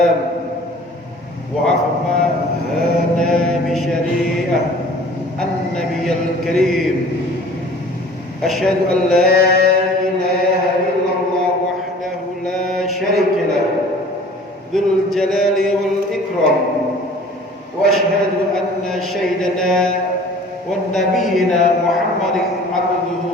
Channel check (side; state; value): both; normal; correlation 0.47